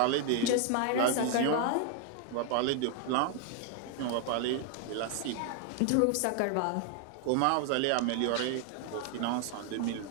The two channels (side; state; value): both; different; correlation 0.00